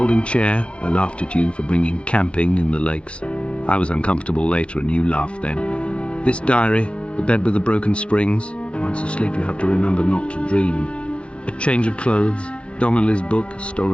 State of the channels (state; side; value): late; right; 0.059 ms